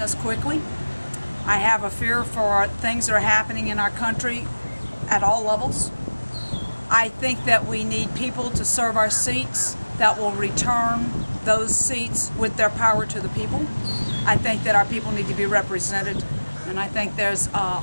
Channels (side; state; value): both; inverted; correlation -1.00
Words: us quickly. I have a fear for things that are happening in our country at all levels. I think that we need people to serve our seats that will return those seats with their power to the people. I think that our people need to be represented, and I think there's